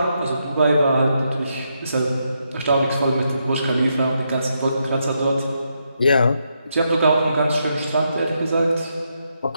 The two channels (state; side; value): inverted; both; correlation -0.81